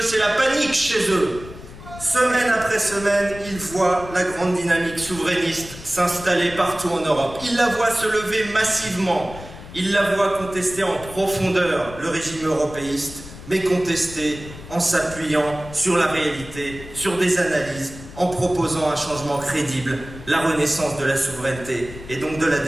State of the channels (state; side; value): noise; left; rumble, 15 dB below the sound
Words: c'est la panique chez eux. Semaine après semaine, ils voient la grande dynamique souverainiste s'installer partout en Europe. Ils la voient se lever massivement. Ils la voient contester en profondeur le régime européiste, mais contester en s'appuyant sur la réalité, sur des analyses, en proposant un changement crédible, la renaissance de la souveraineté et donc de la